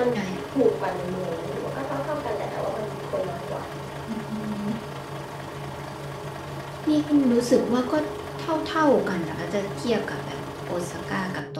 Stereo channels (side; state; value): both; identical; correlation 1.00